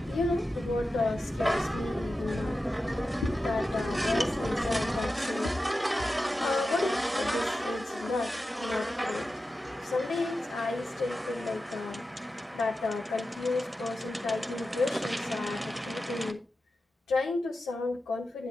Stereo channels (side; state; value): both; normal; correlation 0.92